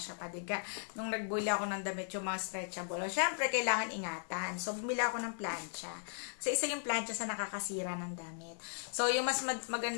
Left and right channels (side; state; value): right; silent; digital silence